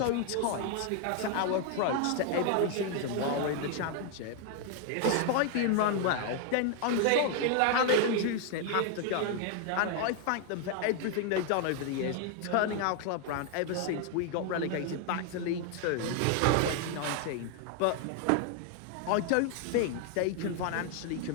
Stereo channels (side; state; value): both; different; correlation 0.00